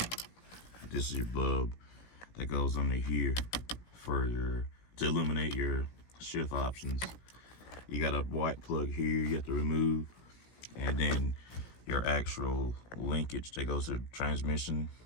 This is your bulb that goes under here to illuminate your shift options. You got a white plug here you have to remove, and then your actual linkage that goes to the transmission.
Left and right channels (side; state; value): right; late; 17 ms